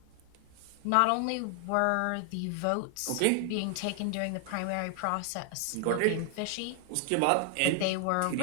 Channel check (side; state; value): both; different; correlation 0.00